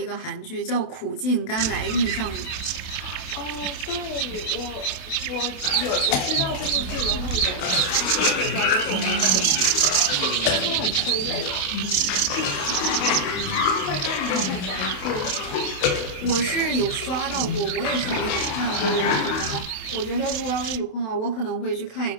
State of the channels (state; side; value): late; right; 28 ms